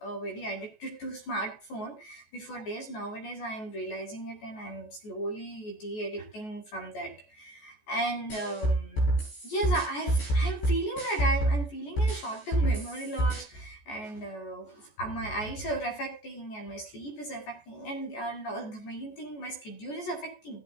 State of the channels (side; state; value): right; late; 14 ms